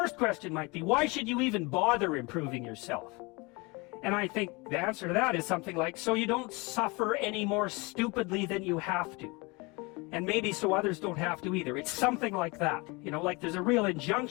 question might be, why should you even bother improving yourself? And I think the answer to that is something like, so you don't suffer any more stupidly than you have to. And maybe so others don't have to either. It's something like that. You know, like there's a real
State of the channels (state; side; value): quieter; right; 26.7 dB